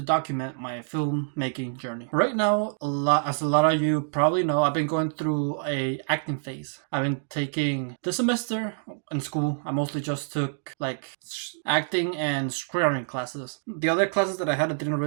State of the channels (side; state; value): left; silent; digital silence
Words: document my filmmaking journey. Right now, as a lot of you probably know, I've been going through a acting phase. I've been taking this semester in school. I mostly just took like acting and screenwriting classes. The other classes that I had, I didn't